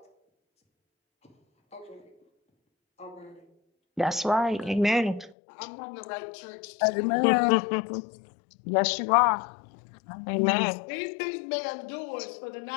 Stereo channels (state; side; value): drops out; right; at 5.4 s